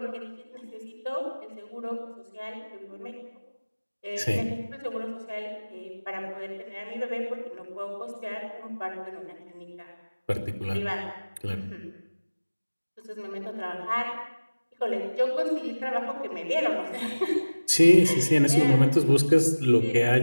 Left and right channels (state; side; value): inverted; both; correlation -1.00